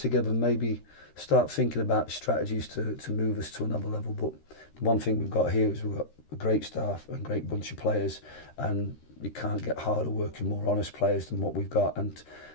and maybe start thinking about strategies to move us to another level. But the one thing we've got here is we've got a great staff and a great bunch of players, and you can't get harder working, more honest players than what we've got, and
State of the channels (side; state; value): right; late; 13 ms